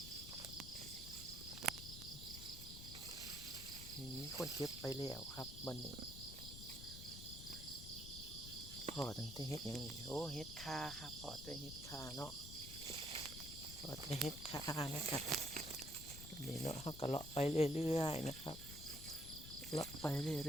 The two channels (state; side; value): noise; left; rumble, 10 dB below the sound